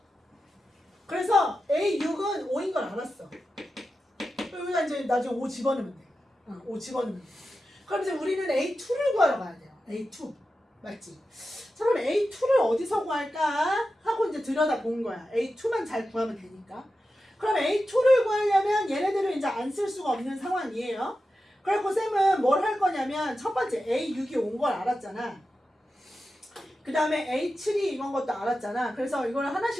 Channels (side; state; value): both; normal; correlation 0.91